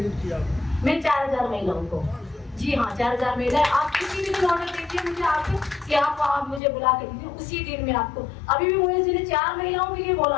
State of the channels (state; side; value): drops out; right; at 6.6 s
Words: किया? मैं 4000 महिलाओं को। जी हाँ, 4000 महिलाएं। आप किसी भी ऑर्डर दीजिए मुझे आके कि आप मुझे बुला के दीजिए, उसी दिन में आपको। अभी भी मुझे जिन्हें 4 महिलाओं के लिए बोला